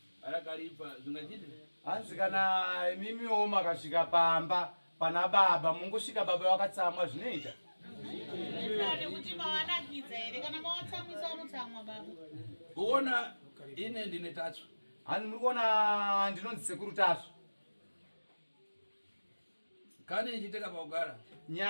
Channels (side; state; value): both; inverted; correlation -1.00